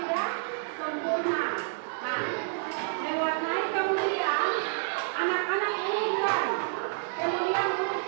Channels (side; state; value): left; silent; 58 dB below the other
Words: sempurna. Nah, diwarnai kemudian anak-anak urutkan,